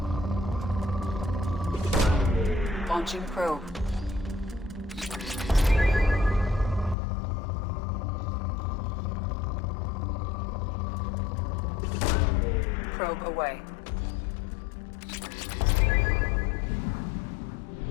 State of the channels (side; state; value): right; drops out; at 7.0 s